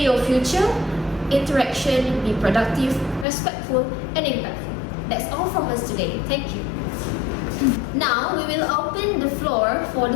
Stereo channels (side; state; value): right; drops out; at 3.2 s